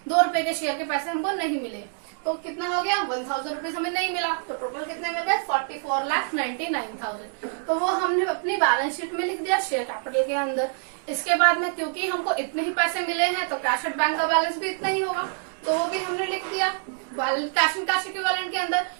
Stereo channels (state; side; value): silent; left; 61 dB below the other